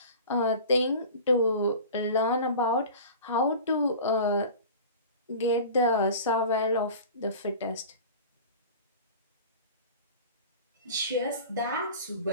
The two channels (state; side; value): inverted; both; correlation -0.38